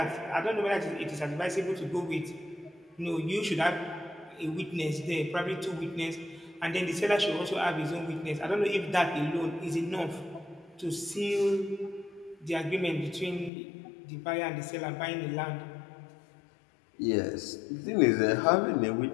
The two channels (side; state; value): right; drops out; at 13.5 s